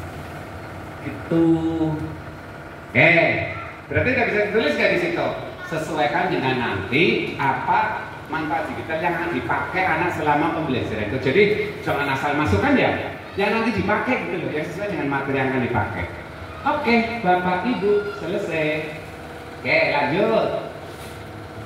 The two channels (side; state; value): both; identical; correlation 1.00